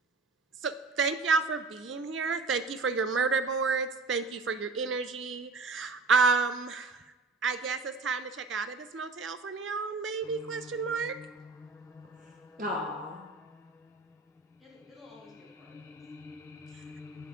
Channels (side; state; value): left; quieter; 4.1 dB